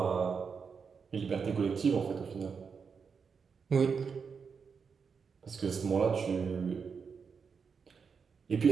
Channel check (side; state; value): left; quieter; 5.9 dB